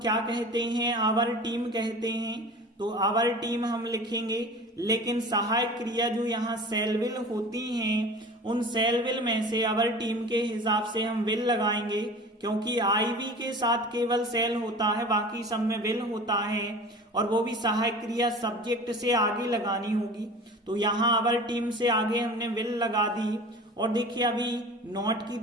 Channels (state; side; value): normal; both; correlation 0.38